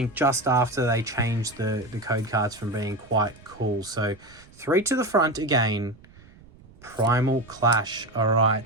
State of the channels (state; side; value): noise; right; rumble, 24 dB below the sound